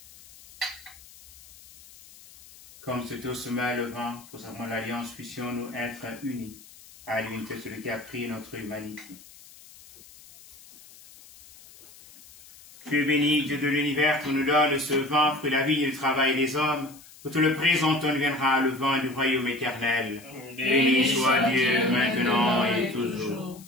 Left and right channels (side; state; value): left; noise; hiss, 22 dB below the sound